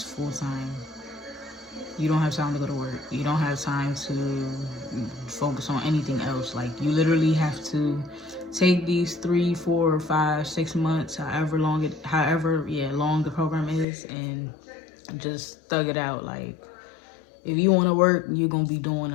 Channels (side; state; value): right; drops out; at 13.9 s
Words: full-time. You don't have time to go to work. You don't have time to focus on anything else. Like you literally have to take these 3, 4, 5, 6 months, however long the program is, and just thug it out. Like if you want to work, you're gonna be doing